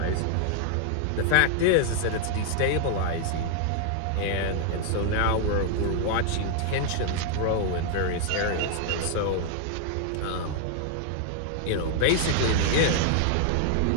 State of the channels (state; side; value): different; both; correlation 0.00